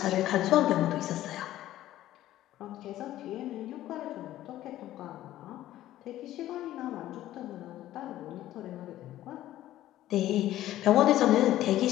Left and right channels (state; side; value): quieter; right; 13.9 dB